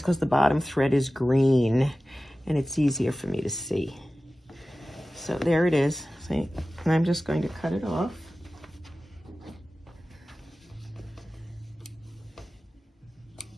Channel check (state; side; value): normal; both; correlation 0.96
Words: the bottom thread is green and it's easier for me to see. So there it is, see? And I'm just going to cut it off.